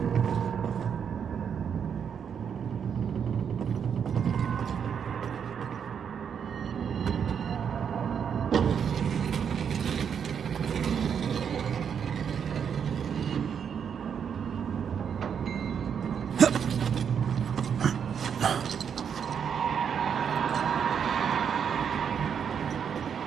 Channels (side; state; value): left; quieter; 7.5 dB